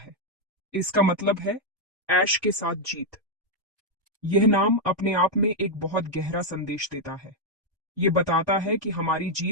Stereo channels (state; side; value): normal; both; correlation -0.02